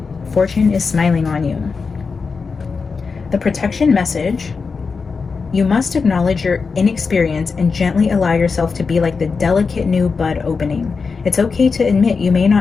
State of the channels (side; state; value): right; quieter; 4.9 dB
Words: Fortune is smiling on you. The protection message. You must acknowledge your inexperience and gently allow yourself to be like the delicate new bud opening. It's okay to admit you may